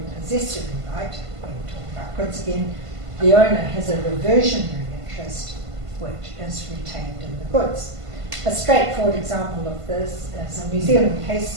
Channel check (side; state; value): left; late; 1.5 ms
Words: possessory right, when we talk about goods again, the owner has a reversionary interest which is retained in the goods. A straightforward example of this is a New Zealand